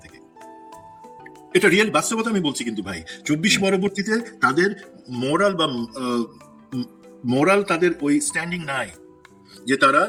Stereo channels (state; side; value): identical; both; correlation 1.00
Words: থেকে। এটা রিয়েল বাস্তবতা আমি বলছি কিন্তু ভাই, 24 পরবর্তীতে তাদের মোরাল তাদের ওই স্ট্যান্ডিং নাই যে তারা